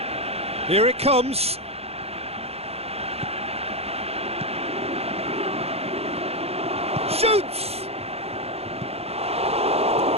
Here it comes. Shoots!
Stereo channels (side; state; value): left; late; 0.29 ms